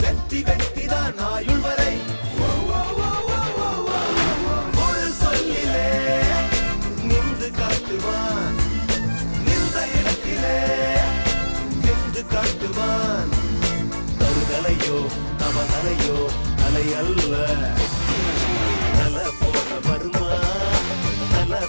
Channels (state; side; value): inverted; both; correlation -1.00